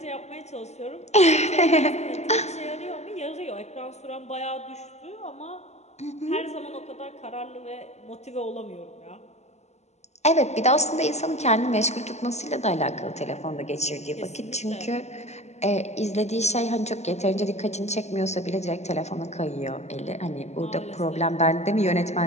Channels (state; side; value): late; right; 0.32 ms